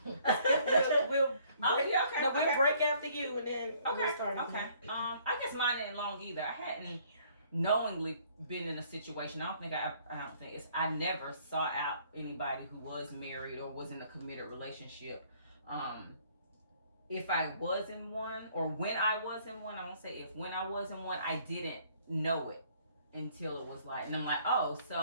We'll break after you and then we'll start. Okay. I guess mine ain't long either. I hadn't knowingly been in a situation. I never sought out anybody who was married or was in a committed relationship. If I was in one, or when I was in one, I won't say if, when I was in one, I didn't know it until it was like, and I'm like, oh,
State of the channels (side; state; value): both; inverted; correlation -0.61